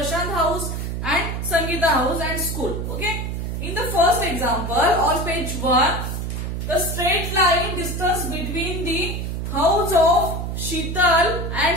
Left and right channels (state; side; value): noise; right; hum, 3 dB below the sound